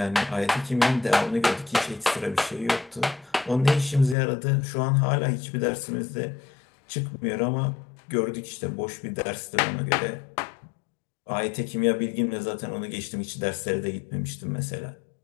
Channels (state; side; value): drops out; right; at 4.2 s